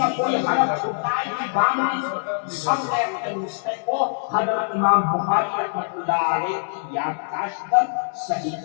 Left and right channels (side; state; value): right; silent; 63 dB below the other